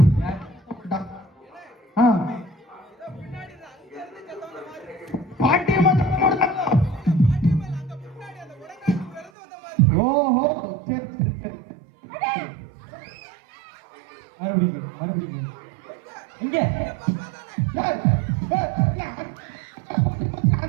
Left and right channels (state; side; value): drops out; left; at 9.3 s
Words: பாட்டியம்மா சத்தம் போடுறாங்க. ஓஹோ சரி சரி சரி. மறுபடியும் இங்க